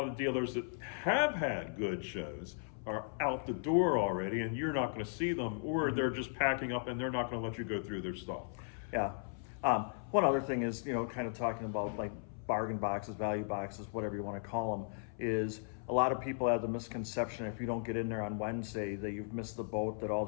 of dealers that have had good shows are out the door already, and you're not going to see them, or they're just packing up and they're not going to let you go through their stuff. Yeah. One other thing is, kind of talking about like bargain boxes, value boxes, whatever you want to call them, is a lot of people have the misconception if you don't get in there on Wednesday that you've missed the boat, that all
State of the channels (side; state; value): right; silent; 53 dB below the other